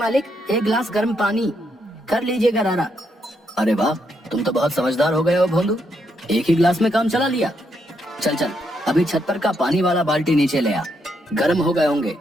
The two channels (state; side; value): normal; both; correlation 0.78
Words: 1 गिलास गर्म पानी, कर लीजिए गरारा। अरे वाह, तुम तो बहुत समझदार हो गए हो भोंदू, एक ही गिलास में काम चला लिया। चल चल, अभी छत पर का पानी वाला बाल्टी नीचे ले आ। गर्म हो गए होंगे,